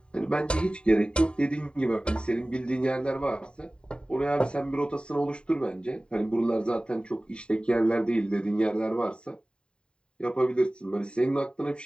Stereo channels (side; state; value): right; late; 0.052 ms